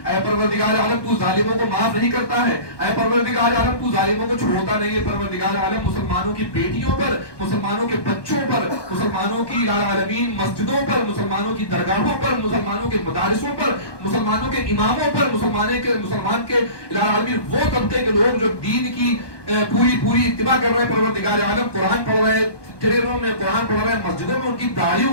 پروردگار عالم تو ظالموں کو معاف نہیں کرتا ہے، اے پروردگار عالم تو ظالموں کو چھوڑتا نہیں ہے. پروردگار عالم مسلمانوں کی بیٹیوں پر، مسلمانوں کے بچوں پر، مسلمانوں کی الہ العالمین مسجدوں پر، مسلمانوں کی درگاہوں پر، مسلمانوں کے مدارسوں پر، مسلمانوں کے اماموں پر، مسلمان کے الہ العالمین وہ طبقے کے لوگ جو دین کی پوری اتباع کر رہے ہیں پروردگار عالم، قرآن پڑھ رہے ہیں، ٹرینوں میں قرآن پڑھ رہے ہیں، مسجدوں میں ان کی داڑھیوں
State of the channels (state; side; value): late; right; 1.2 ms